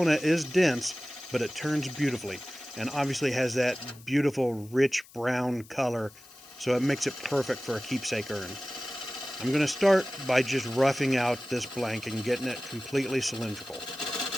is dense, but it turns beautifully, and obviously has that beautiful rich brown color, so it makes it perfect for a keepsake urn. I'm going to start by just roughing out this blank and getting it completely cylindrical.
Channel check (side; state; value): left; noise; hiss, 23 dB below the sound